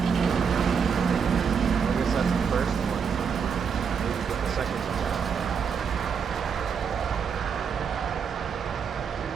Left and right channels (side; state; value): left; quieter; 6.5 dB